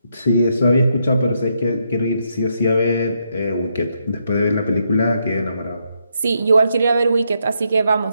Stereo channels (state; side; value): inverted; both; correlation -0.78